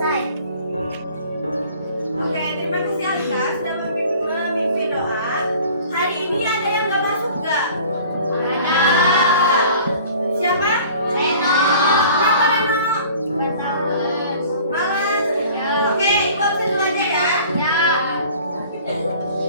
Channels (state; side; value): inverted; both; correlation -0.48